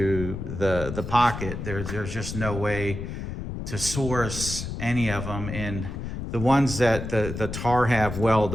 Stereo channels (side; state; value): left; noise; rumble, 6 dB below the sound